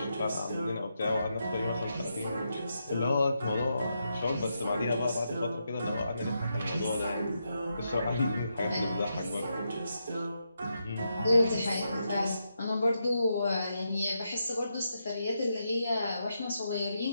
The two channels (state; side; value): inverted; both; correlation -0.83